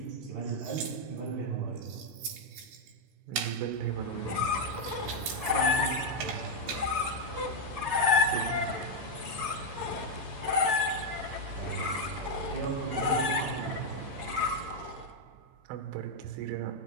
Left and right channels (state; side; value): late; left; 17 ms